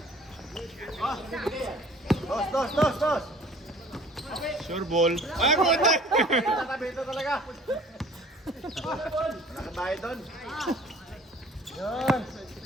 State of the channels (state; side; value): normal; both; correlation 0.51